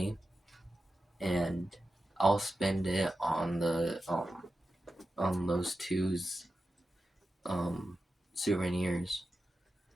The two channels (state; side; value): normal; both; correlation 0.91